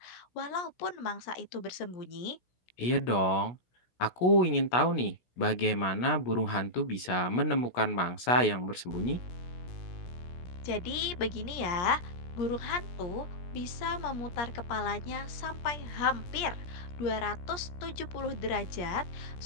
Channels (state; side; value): late; right; 16 ms